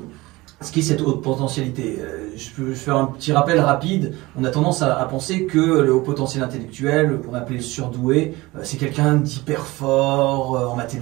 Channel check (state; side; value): quieter; left; 20.9 dB